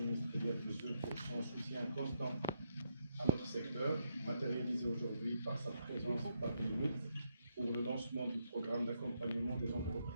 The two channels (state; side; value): inverted; both; correlation -0.76